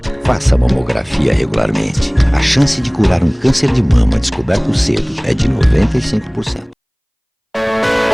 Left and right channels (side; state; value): both; identical; correlation 1.00